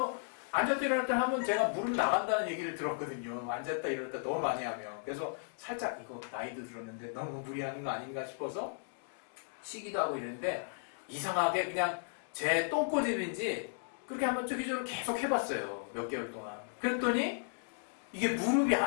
앉았다 일어났다 하면 제가 무릎 나간다는 얘기를 들었거든요. 앉았다 일어났다 너무 많이 하면. 그래서 살짝 이거 나이도 들었는데 너무 무리하는 거 아닌가 싶어서 쉬기도 하고 이랬는데, 이상하게 그냥 제 똥꼬집인지 그렇게 한번 저기저기 계속 해봤어요. 몇 개월 동안. 그랬더니 이게 무릎이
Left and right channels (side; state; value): right; silent; digital silence